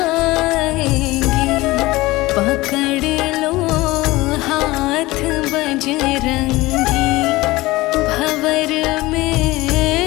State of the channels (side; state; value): right; quieter; 19.7 dB